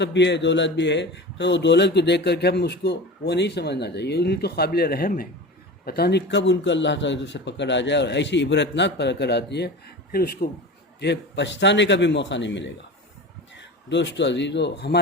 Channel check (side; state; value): both; normal; correlation 0.32